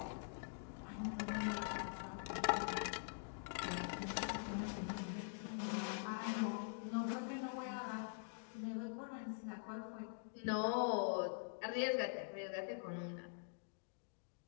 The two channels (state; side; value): silent; right; digital silence